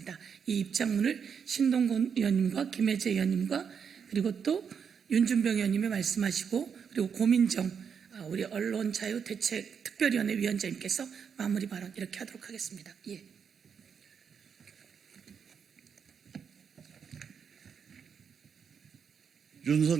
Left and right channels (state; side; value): quieter; left; 6.9 dB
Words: 이 입장문을 신동근 의원님과 김혜재 의원님과 그리고 또 윤준병 의원님이 말씀하시고 그리고 고민정 우리 언론자유대책 특별위원회 위원장님께서 마무리 발언 이렇게 하도록 하겠습니다.